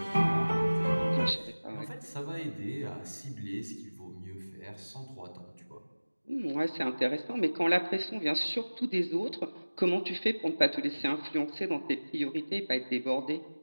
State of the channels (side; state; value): both; inverted; correlation -1.00